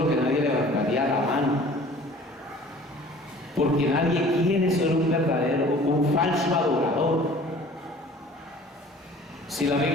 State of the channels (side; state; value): both; normal; correlation 0.48